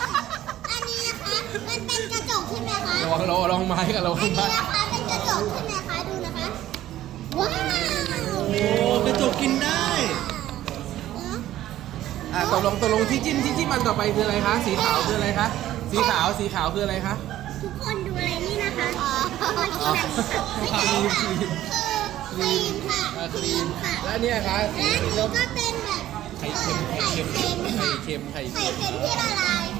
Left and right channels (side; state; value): left; quieter; 13.5 dB